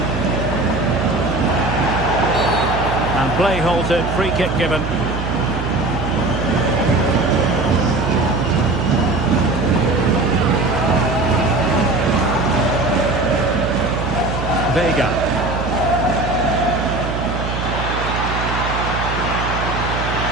And play halted, free kick given. Vega.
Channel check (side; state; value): right; noise; hum, 4 dB below the sound